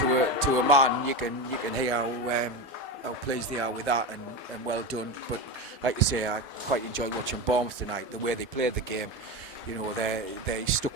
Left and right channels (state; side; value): normal; both; correlation 0.20